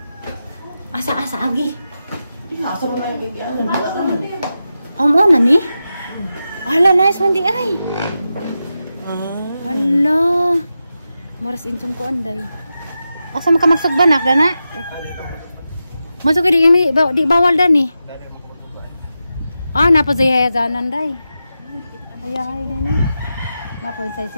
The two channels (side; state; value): both; inverted; correlation -0.90